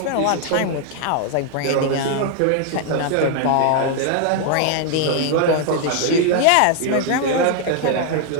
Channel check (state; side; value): different; both; correlation 0.00